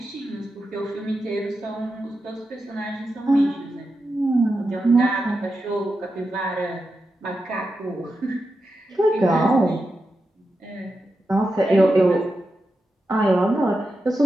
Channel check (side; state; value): both; normal; correlation 0.89